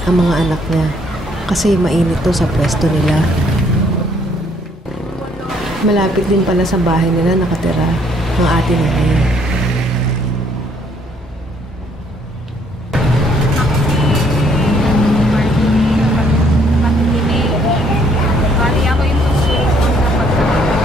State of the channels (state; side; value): normal; both; correlation 0.66